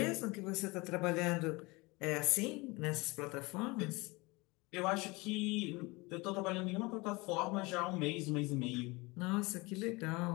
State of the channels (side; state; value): right; quieter; 24.5 dB